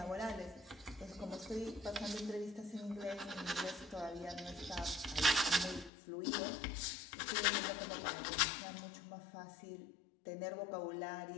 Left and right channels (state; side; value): drops out; right; at 5.9 s